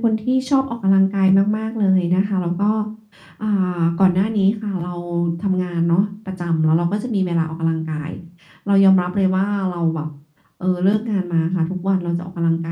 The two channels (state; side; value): identical; both; correlation 1.00